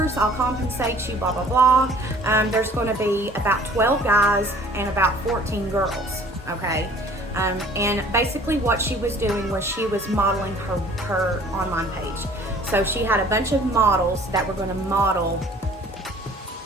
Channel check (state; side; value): normal; both; correlation 0.52